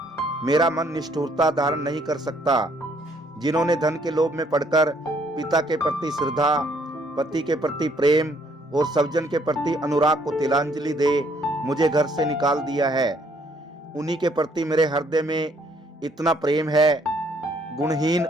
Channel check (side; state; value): both; normal; correlation 0.66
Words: मेरा मन निष्ठुरता धारण नहीं कर सकता। जिन्होंने धन के लोभ में पड़कर पिता के प्रति श्रद्धा, पति के प्रति प्रेम और सज्जन के प्रति अनुराग को तिलांजलि दे मुझे घर से निकाल दिया है, उन्हीं के प्रति मेरे हृदय में इतना प्रेम है। गुणहीन